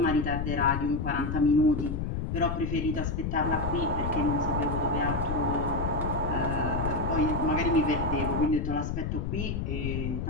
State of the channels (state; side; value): noise; left; rumble, 2 dB below the sound